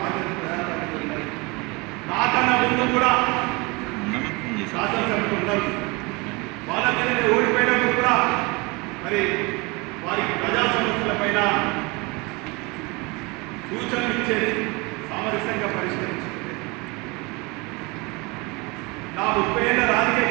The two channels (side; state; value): left; quieter; 26.5 dB